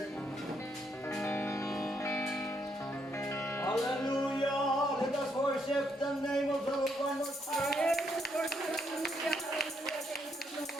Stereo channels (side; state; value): both; normal; correlation 0.75